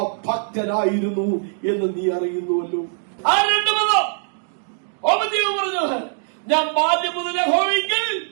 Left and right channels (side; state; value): left; silent; digital silence